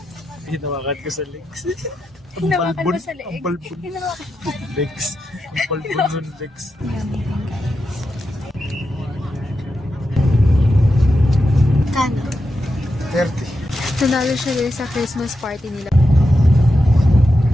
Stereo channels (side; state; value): both; normal; correlation 0.87